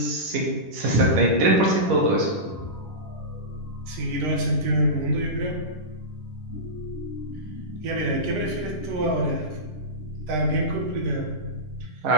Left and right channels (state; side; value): late; left; 10 ms